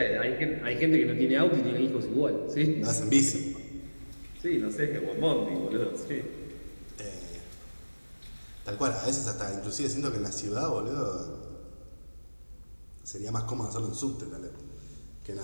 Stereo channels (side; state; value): both; inverted; correlation -1.00